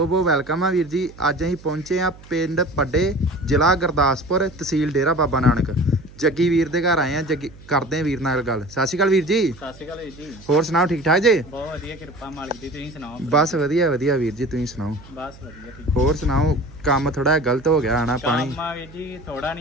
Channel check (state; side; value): noise; right; hum, 21 dB below the sound